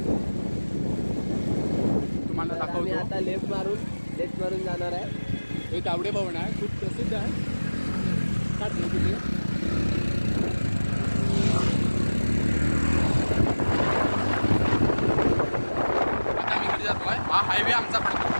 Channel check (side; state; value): both; inverted; correlation -1.00